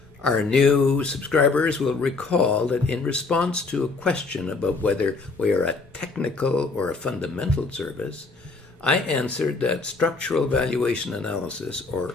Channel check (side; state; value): right; quieter; 3.9 dB